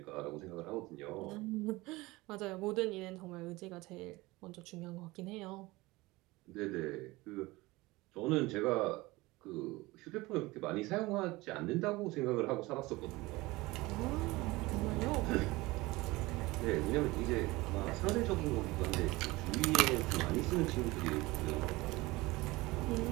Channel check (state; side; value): quieter; left; 21.2 dB